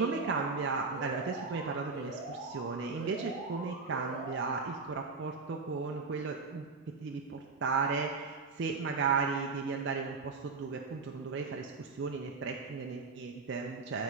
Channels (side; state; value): left; quieter; 4.4 dB